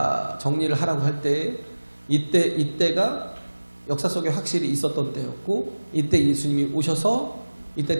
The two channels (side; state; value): both; inverted; correlation -1.00